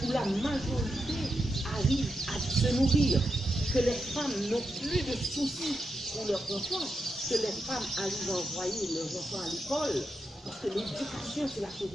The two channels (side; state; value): both; normal; correlation 0.86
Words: où la majorité arrive à se nourrir, que les femmes n'ont plus de soucis pour leurs enfants, que les femmes arrivent à envoyer leurs enfants à l'école, parce que l'éducation, c'est la chose